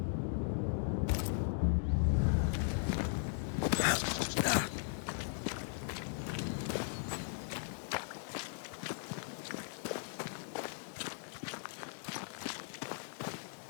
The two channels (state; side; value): silent; right; digital silence